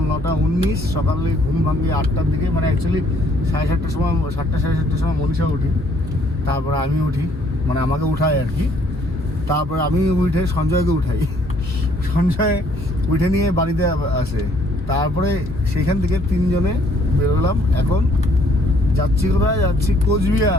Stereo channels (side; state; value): both; normal; correlation 0.64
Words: 9:19। সকালে ঘুম ভাঙে 8টার দিকে, মানে অ্যাকচুয়ালি 7:30টার সময়, 7টা 7:30টার সময় মনীষা উঠি, তারপরে আমি উঠি, মানে আমাকে উঠায় আর কি। তারপরে আমি উঠে সঞ্জয়কে উঠাই, সঞ্জয় উঠে নিয়ে বাড়িতে আসে। তারপরে সেইখান থেকে তিনজনে বেরোলাম। এখন যাচ্ছি কোথায়? যাচ্ছি